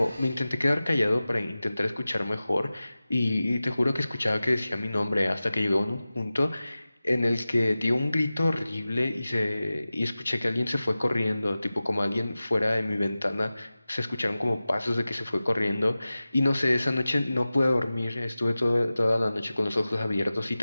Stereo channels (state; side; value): inverted; both; correlation -0.96